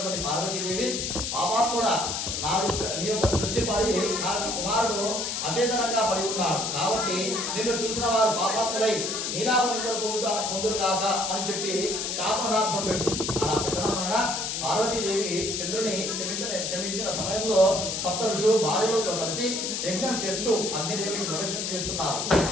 పార్వతీదేవి, పాపాత్ముడా, నీ యొక్క దృష్టి పడి నా కుమారుడు అచేతనంగా పడి ఉన్నాడు కాబట్టి నిన్ను చూసిన వారు పాపాత్ములై నీలాభ నిందలు పొందురు కాక అని చెప్పి శాపనార్థం పెట్టు. అలా పెట్టడం వలన వలన పార్వతీదేవి చంద్రుని క్షమించిన సమయంలో సప్త ఋషులు భార్యలతో కలిసి యజ్ఞం చేస్తూ అగ్నిదేవునికి ప్రదక్షిణ చేస్తున్నారు.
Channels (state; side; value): noise; left; hiss, 2 dB below the sound